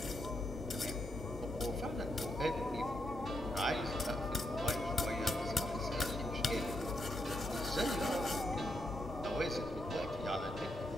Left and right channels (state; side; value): normal; both; correlation 0.80